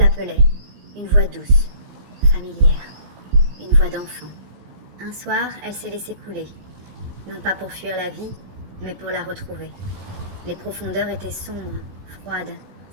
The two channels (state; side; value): late; left; 16 ms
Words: une voix douce, familière, une voix d'enfant. Un soir, elle s'est laissée couler, non pas pour fuir la vie, mais pour la retrouver. Les profondeurs étaient sombres, froides,